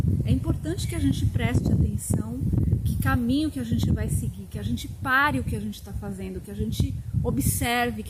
é importante que a gente preste atenção que caminho que a gente vai seguir, que a gente pare o que a gente está fazendo, que a gente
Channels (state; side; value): identical; both; correlation 1.00